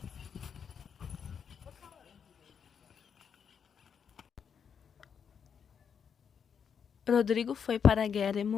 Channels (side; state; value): right; quieter; 7.2 dB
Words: Rodrigo foi para a guerra e